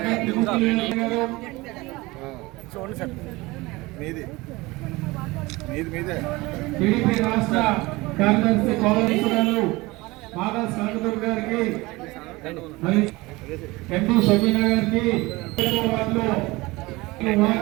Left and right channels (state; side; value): quieter; left; 21.9 dB